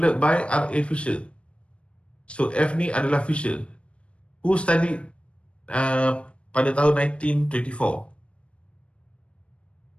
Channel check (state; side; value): late; right; 0.060 ms